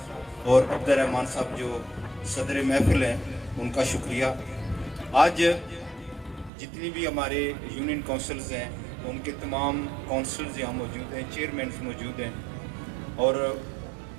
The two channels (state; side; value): drops out; left; at 6.5 s